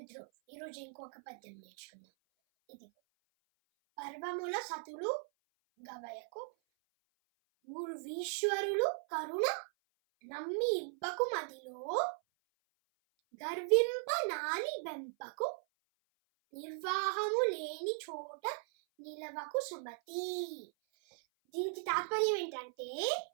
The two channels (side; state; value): left; silent; 52 dB below the other